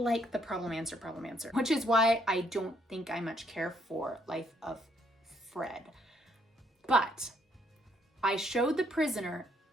the problem answer, which is why I don't think I much care for Life of Fred. But I showed the prisoner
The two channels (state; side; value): normal; both; correlation 0.70